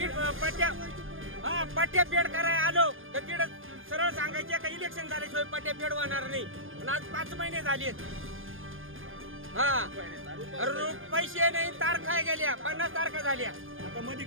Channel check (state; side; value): late; left; 0.59 ms